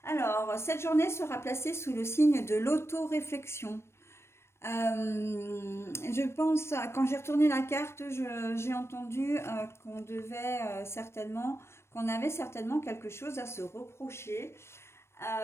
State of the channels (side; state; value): right; late; 0.13 ms